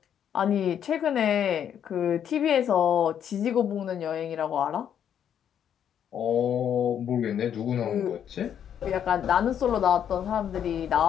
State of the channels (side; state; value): right; quieter; 9.1 dB